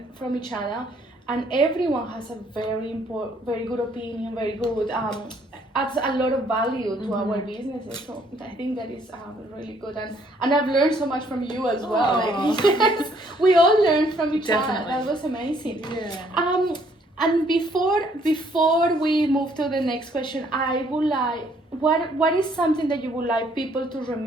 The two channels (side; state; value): both; normal; correlation 0.65